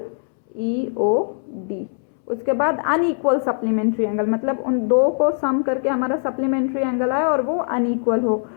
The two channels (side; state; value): right; silent; 65 dB below the other